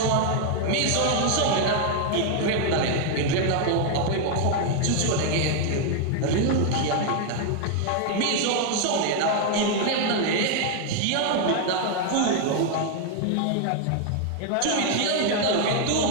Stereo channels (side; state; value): both; different; correlation 0.00